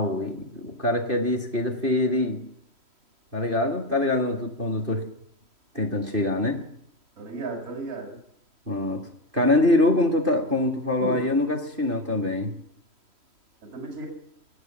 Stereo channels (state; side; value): late; left; 3.1 ms